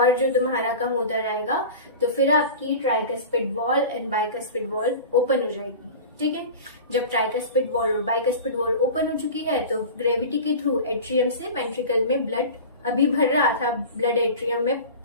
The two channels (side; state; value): both; inverted; correlation -0.34